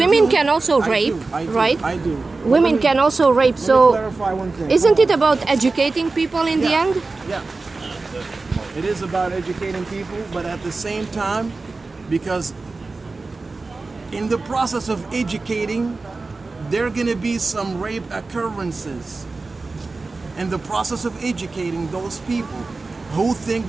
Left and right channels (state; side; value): quieter; left; 3.7 dB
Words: can also rape, right? I do. Women can also rape, so clarify one thing. Isn't it about educating people in the end? Yeah. It is about educating people, but at the same time, because in the process of educating, there are going to be some rape occurrences. In the process of educating those people who think